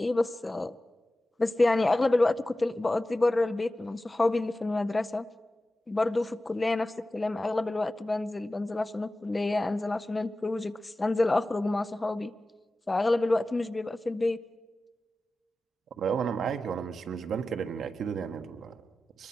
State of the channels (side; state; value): both; normal; correlation 0.95